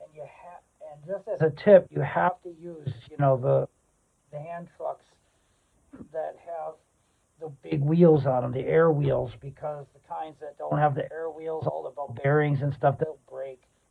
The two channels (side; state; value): both; identical; correlation 1.00